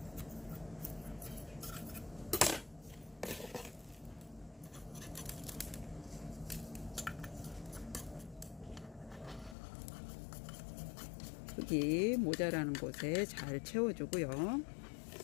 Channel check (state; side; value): drops out; right; at 9.6 s